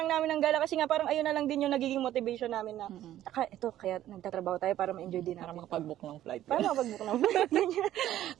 namin ng gala kasi nga parang ayun na lang din yung nagiging motivation namin na, kaya nagtatrabaho tayo para ma-enjoy din natin. Para makapag-book ng flight.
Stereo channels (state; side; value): quieter; left; 12.8 dB